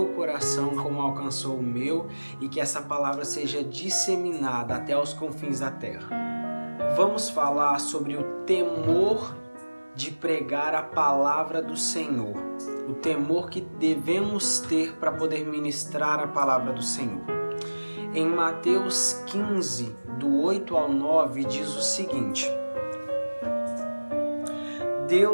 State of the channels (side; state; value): both; inverted; correlation -1.00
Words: coração como alcançou o meu e que essa palavra seja disseminada até os confins da terra. Vamos falar sobre o temor de pregar a palavra do Senhor, o temor que devemos ter para poder ministrar a palavra do Senhor. Em Mateus 15, do 8 ao 9, diz o seguinte: